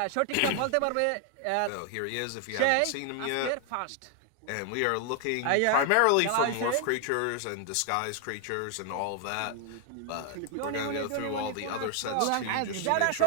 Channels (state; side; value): different; both; correlation 0.00